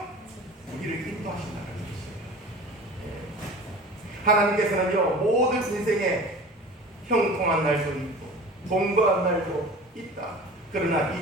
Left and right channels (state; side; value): normal; both; correlation 0.39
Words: 우리를 인도하신다는 것이에요. 하나님께서는요, 모든 인생에 형통한 날도 있고 동거한 날도 있다. 그러나